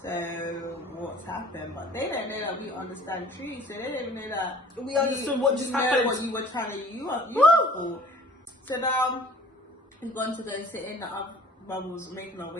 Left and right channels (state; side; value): normal; both; correlation 0.50